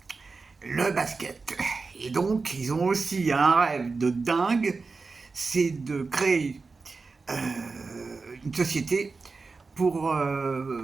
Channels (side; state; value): left; quieter; 4.2 dB